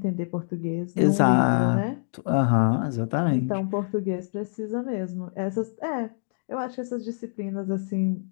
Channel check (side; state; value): right; silent; digital silence